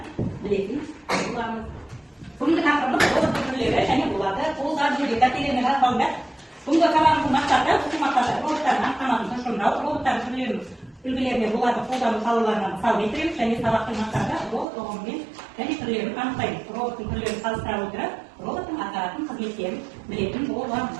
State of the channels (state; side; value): drops out; left; at 14.7 s